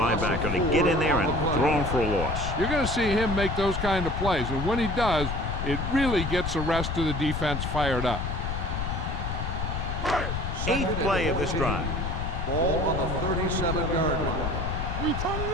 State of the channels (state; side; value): noise; left; rumble, 3 dB below the sound